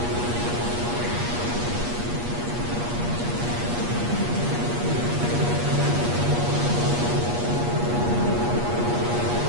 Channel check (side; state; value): left; late; 8.4 ms